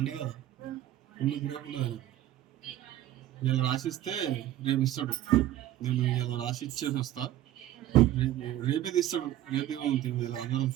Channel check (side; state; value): left; quieter; 13.3 dB